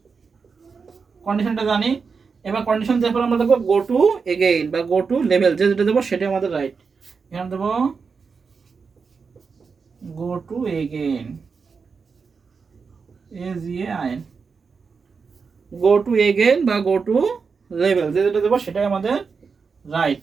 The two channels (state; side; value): quieter; left; 5.3 dB